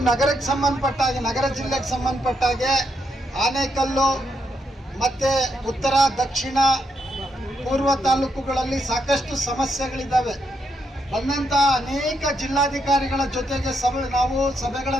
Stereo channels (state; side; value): normal; both; correlation 0.79